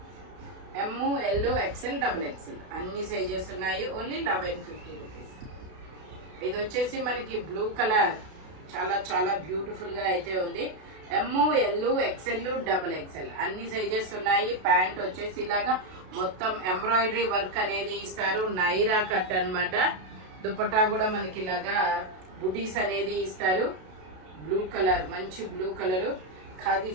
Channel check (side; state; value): left; late; 32 ms